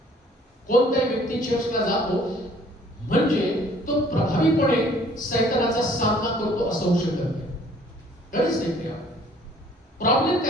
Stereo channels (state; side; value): normal; both; correlation 0.56